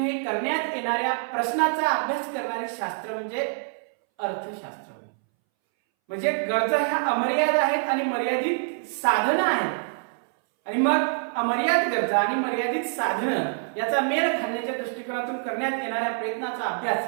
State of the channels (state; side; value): silent; left; 61 dB below the other